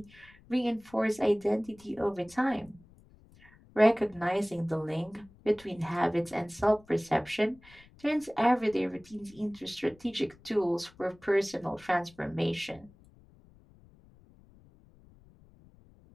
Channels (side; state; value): left; noise; rumble, 26 dB below the sound